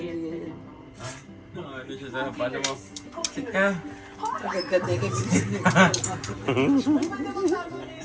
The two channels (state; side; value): identical; both; correlation 1.00